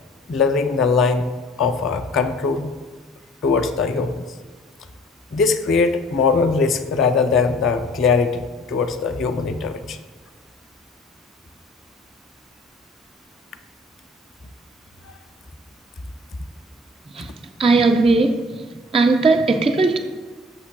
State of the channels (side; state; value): both; normal; correlation 0.51